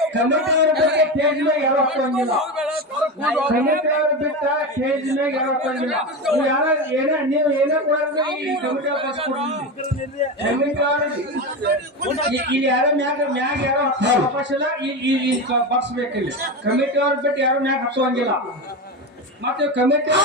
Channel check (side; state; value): both; normal; correlation 0.19